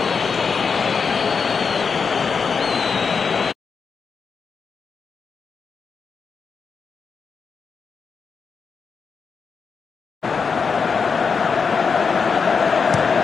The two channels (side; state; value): right; quieter; 5.6 dB